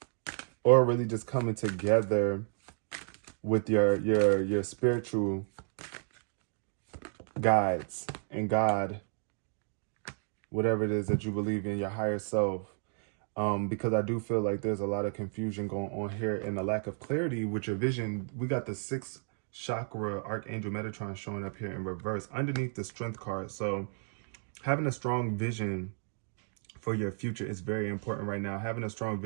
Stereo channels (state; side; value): silent; left; 56 dB below the other